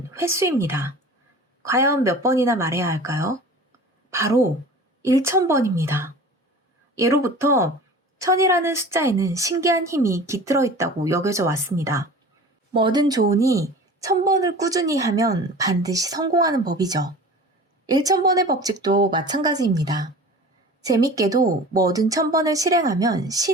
횟수입니다. 과연 몇 번이나 말해야 할까요? 바로 1000번입니다. 예로부터 1000이라는 숫자에는 신기한 힘이 깃들어 있다고 여겨져 왔습니다. 뭐든 좋으니 1000번을 꾸준히 하면 반드시 성공하는 법이죠. 1000번의 법칙도 마찬가지입니다. 재밌게도 뭐든 1000번을 실행하면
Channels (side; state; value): both; normal; correlation 0.39